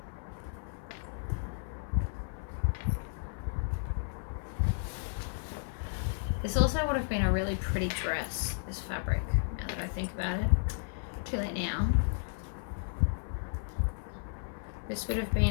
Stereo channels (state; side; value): silent; right; 55 dB below the other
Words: This also would have been a really pretty dress, this fabric, now that I think about it. Too late now. This would have